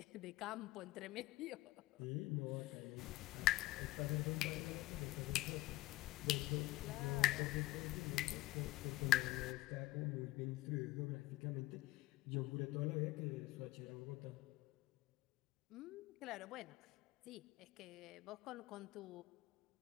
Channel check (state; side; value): quieter; right; 18.0 dB